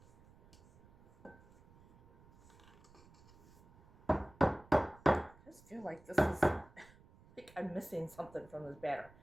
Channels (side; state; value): right; noise; rumble, 25 dB below the sound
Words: I just feel like this is, like I'm missing something from this batter.